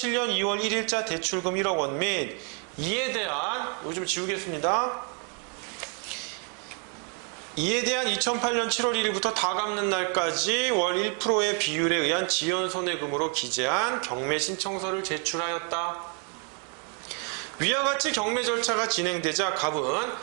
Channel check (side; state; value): left; quieter; 38.9 dB